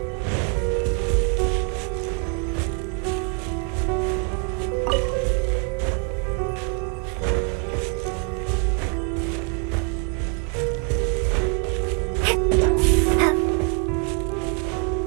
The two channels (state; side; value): quieter; left; 40.0 dB